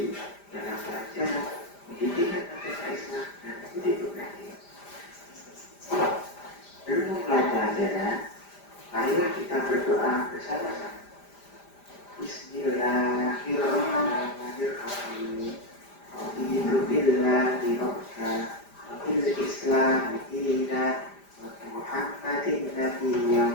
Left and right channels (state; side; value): late; right; 5.0 ms